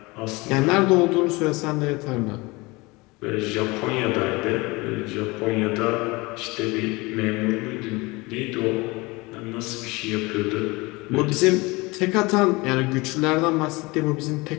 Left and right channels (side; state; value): right; quieter; 23.9 dB